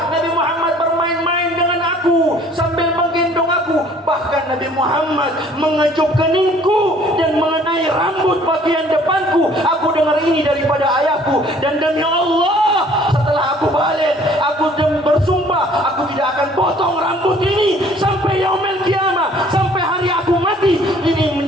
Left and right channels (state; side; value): normal; both; correlation 0.56